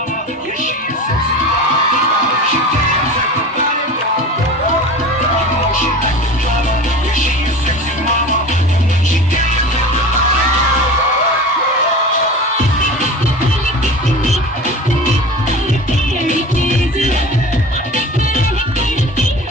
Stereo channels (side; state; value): both; normal; correlation 0.35